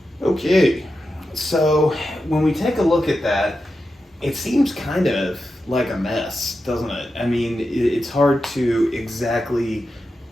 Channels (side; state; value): both; normal; correlation 0.89